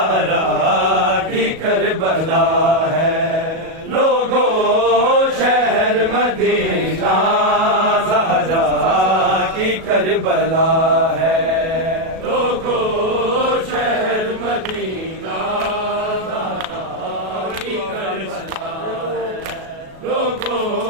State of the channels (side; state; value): left; late; 37 ms